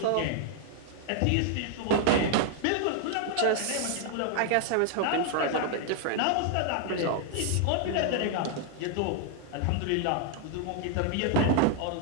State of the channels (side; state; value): both; different; correlation 0.00